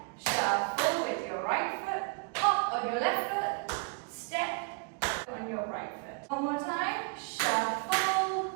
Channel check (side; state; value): left; quieter; 36.3 dB